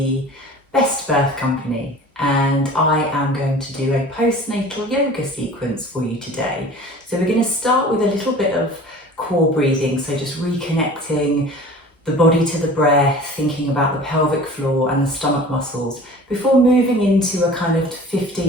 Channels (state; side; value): normal; both; correlation 0.42